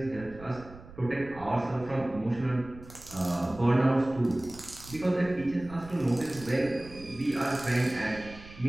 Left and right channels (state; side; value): noise; right; rumble, 18 dB below the sound